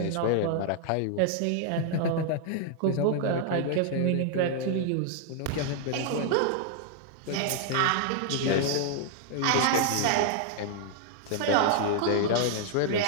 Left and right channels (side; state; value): both; different; correlation 0.00